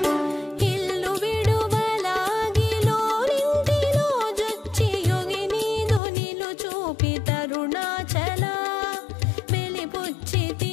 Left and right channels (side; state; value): right; drops out; at 6.0 s